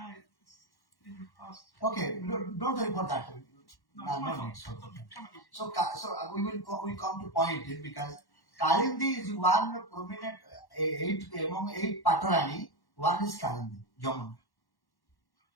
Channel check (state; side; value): late; right; 1.1 ms